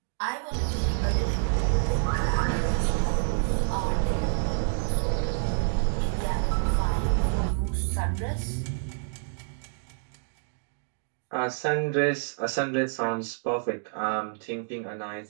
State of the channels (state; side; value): silent; left; digital silence